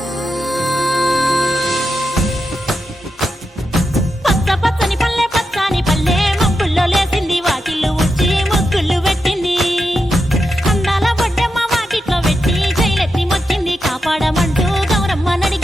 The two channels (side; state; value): both; normal; correlation 0.87